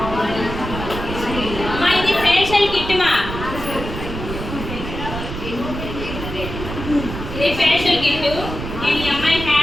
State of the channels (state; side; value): noise; right; rumble, 7 dB below the sound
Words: ఇది ఫేషియల్ కిట్ మా. ఇది ఫేషియల్ కిట్. నేను ఈ అమ్మాయి